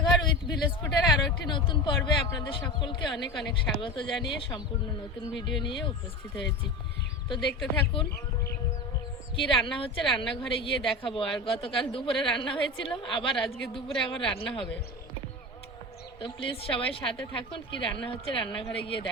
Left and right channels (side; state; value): both; normal; correlation 0.28